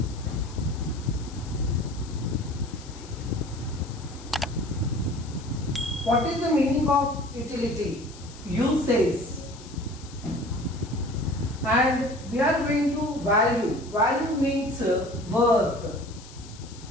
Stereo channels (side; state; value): left; noise; hiss, 19 dB below the sound